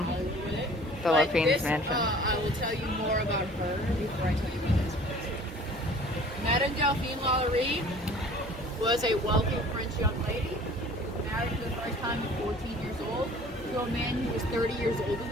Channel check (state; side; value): normal; both; correlation 0.49